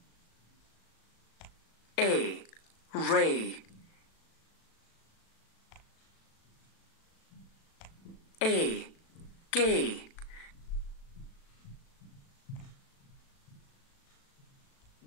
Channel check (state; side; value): late; right; 36 ms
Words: A. Ray. A. Gay.